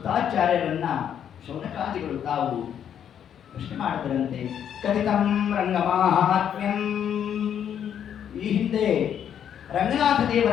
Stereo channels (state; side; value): quieter; right; 9.1 dB